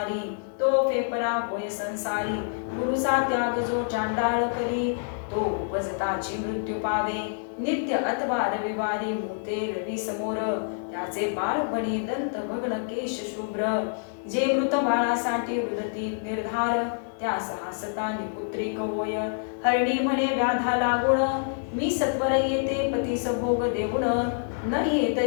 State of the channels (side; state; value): right; silent; digital silence